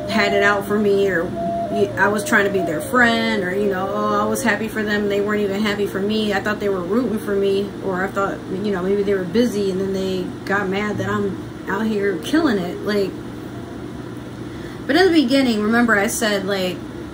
had it out for me, or I was trying to be their friend, or, you know, oh, I was happy for them, they weren't even happy for me, I thought they were rooting for me, or I thought, you know, maybe they were busy and then they got mad that I'm out here killing it. Like, but in the beginning, remember I said, like,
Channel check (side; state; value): both; identical; correlation 1.00